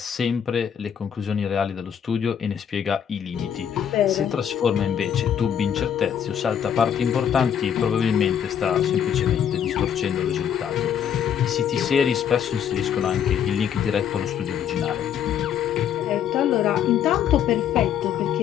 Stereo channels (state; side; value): quieter; right; 8.7 dB